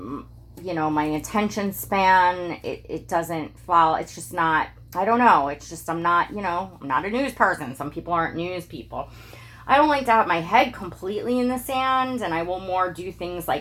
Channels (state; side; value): identical; both; correlation 1.00